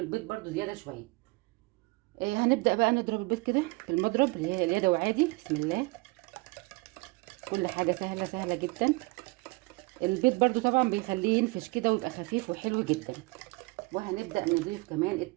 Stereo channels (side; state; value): left; quieter; 26.4 dB